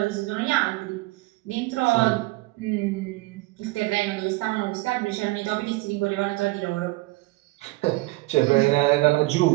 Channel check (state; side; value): quieter; left; 21.3 dB